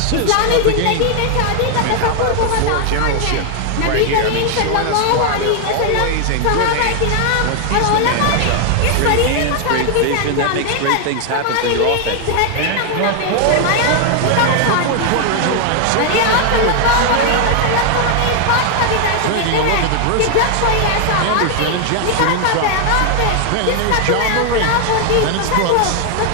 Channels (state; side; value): different; both; correlation 0.00